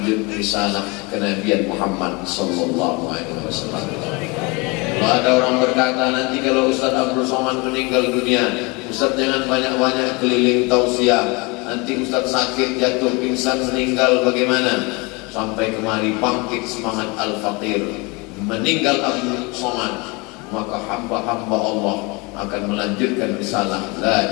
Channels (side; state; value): right; quieter; 27.6 dB